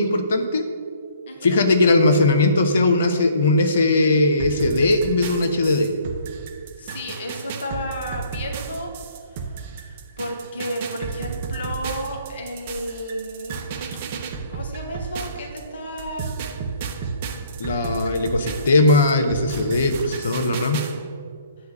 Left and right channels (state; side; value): inverted; both; correlation -0.59